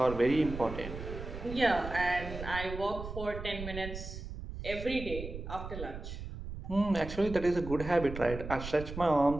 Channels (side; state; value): right; noise; rumble, 9 dB below the sound